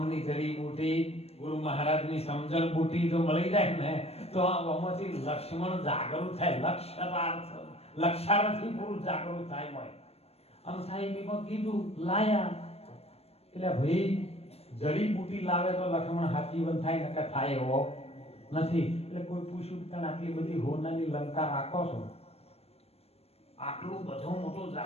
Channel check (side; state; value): right; late; 0.29 ms